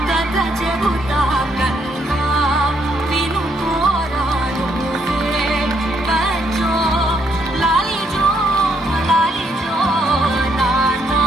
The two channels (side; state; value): both; normal; correlation 0.73